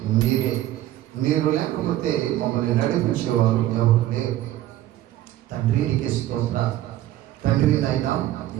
మీరే. మీరు లేకపోతే మమ్మల్ని నడిపించేవారు ఎవరు లేరు తండ్రి, నీకే స్తోత్రాలు. తండ్రి నాయన,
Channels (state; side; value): quieter; left; 14.0 dB